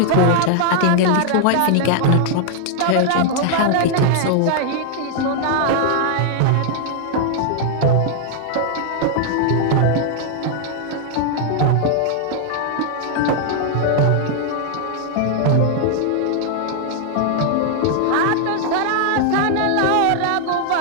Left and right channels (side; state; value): both; different; correlation 0.00